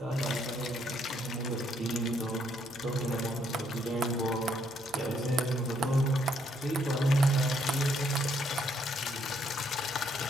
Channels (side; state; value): both; normal; correlation 0.71